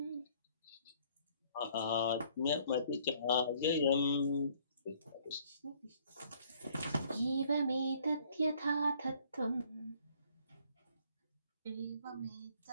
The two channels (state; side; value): inverted; both; correlation -0.61